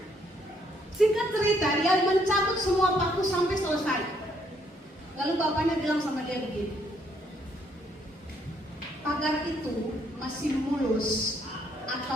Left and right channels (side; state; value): both; normal; correlation 0.70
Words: Singkat cerita, dia mencabut semua paku sampai selesai. Lalu bapaknya bilang sama dia begini, pagar itu masih mulus